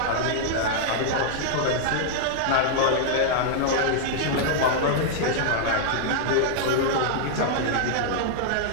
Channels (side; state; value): both; different; correlation -0.01